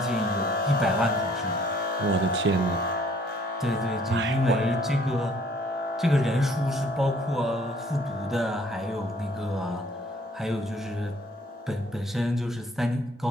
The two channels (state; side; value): normal; both; correlation 0.59